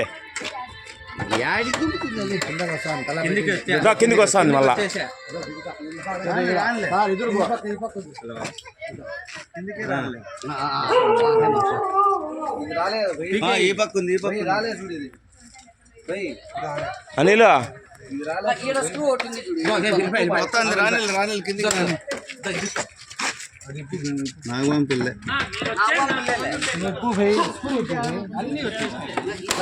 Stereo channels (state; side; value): identical; both; correlation 1.00